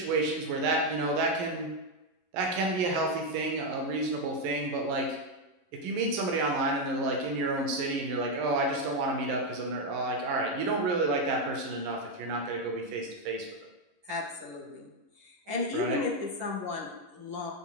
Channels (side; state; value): left; late; 11 ms